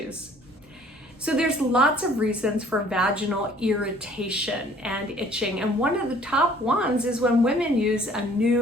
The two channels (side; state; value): both; normal; correlation 0.56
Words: So there's lots of reasons for vaginal irritation and itching, and one of the top ones is when women use a